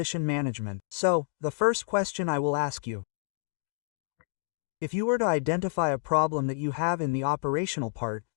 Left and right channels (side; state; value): right; silent; digital silence